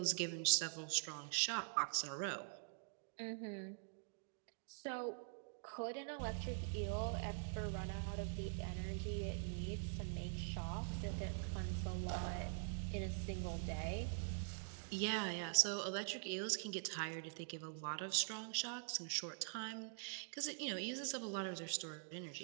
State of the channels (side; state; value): left; silent; digital silence